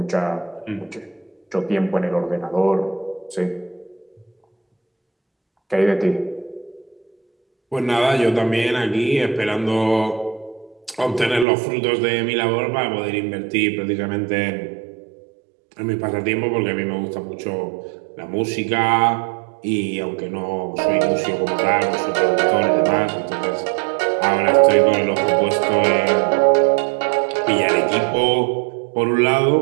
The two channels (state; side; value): drops out; left; at 11.5 s